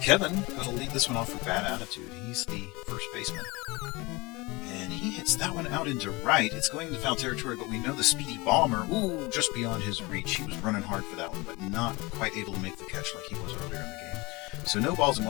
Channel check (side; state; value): right; quieter; 24.0 dB